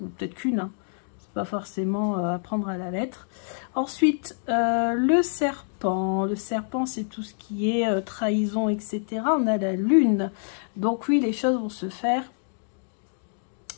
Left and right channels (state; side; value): silent; right; digital silence